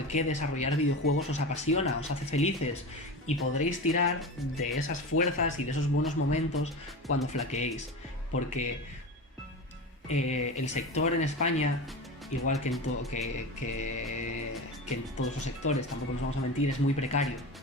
qué desarrollar videojuegos os apasiona, os hace felices y podréis tirar de esas fuerzas y de esos buenos momentos cuando flaqueéis, porque el sector en España igual que en todos los sectores, tampoco nos vamos a mentir, es muy precario.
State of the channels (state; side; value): normal; both; correlation 0.27